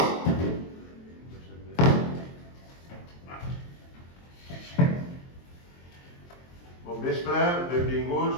Bon vespre, benvinguts,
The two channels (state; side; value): late; right; 23 ms